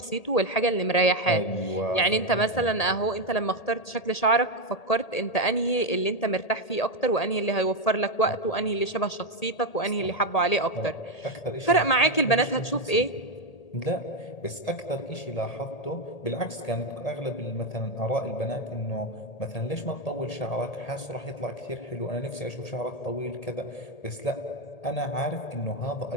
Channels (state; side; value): late; right; 1.8 ms